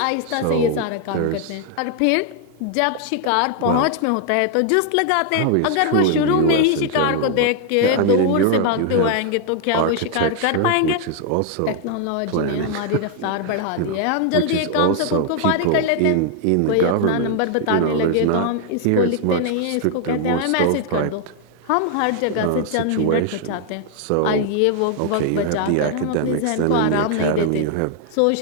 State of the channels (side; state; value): both; different; correlation 0.00